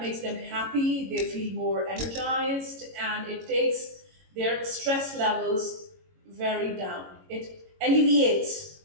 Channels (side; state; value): left; late; 22 ms